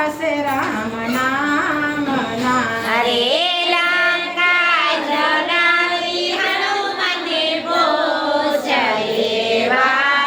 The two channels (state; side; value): identical; both; correlation 1.00